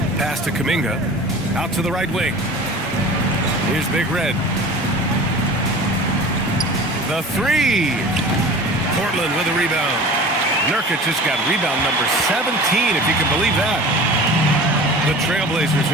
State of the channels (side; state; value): both; normal; correlation 0.39